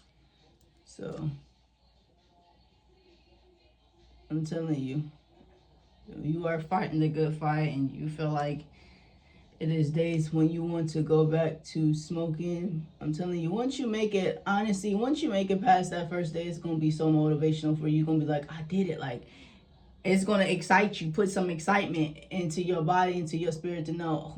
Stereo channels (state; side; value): identical; both; correlation 1.00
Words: So I'm telling you, you are fighting the good fight, and you feel like it is days when you want to go back to smoking. I'm telling you, once you make it past that first day, it's going to be so motivational for you. You're going to be like, I did it. Like, it's going to excite you, put some excitement into your body, into your spirit, to know, oh